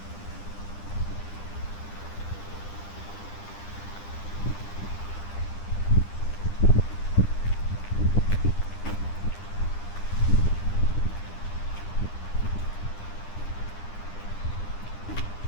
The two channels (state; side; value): late; right; 9.9 ms